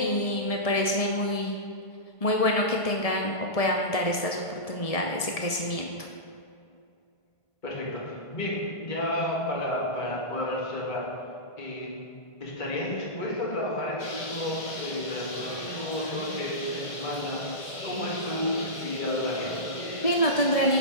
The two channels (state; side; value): late; right; 1.5 ms